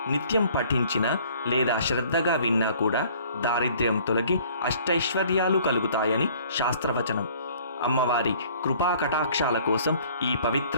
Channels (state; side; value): inverted; both; correlation -0.55